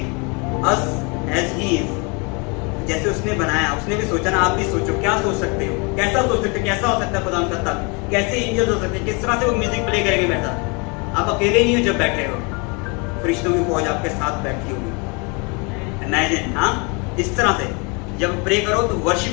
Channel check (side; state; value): right; quieter; 31.3 dB